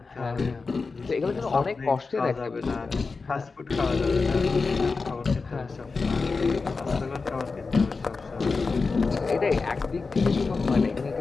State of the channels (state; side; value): quieter; right; 4.3 dB